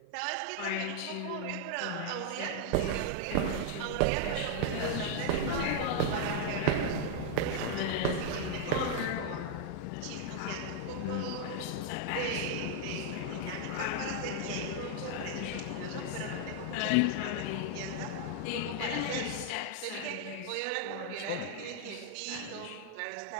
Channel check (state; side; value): different; both; correlation 0.00